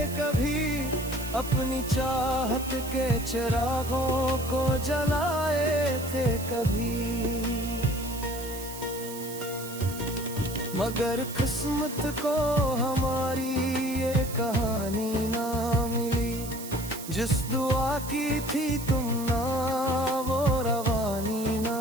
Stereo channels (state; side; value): noise; right; hiss, 12 dB below the sound